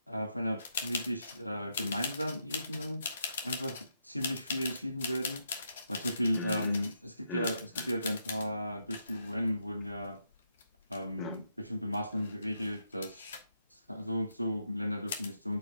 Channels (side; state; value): both; inverted; correlation -0.80